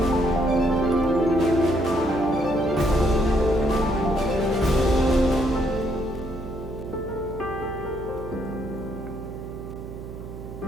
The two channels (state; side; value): noise; right; hum, 11 dB below the sound